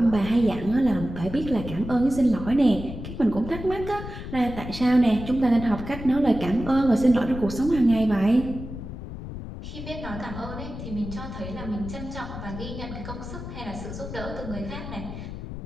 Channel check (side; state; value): left; noise; rumble, 9 dB below the sound